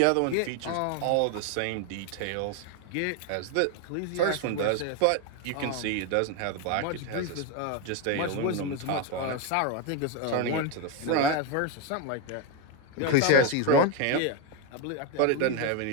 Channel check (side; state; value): both; different; correlation 0.02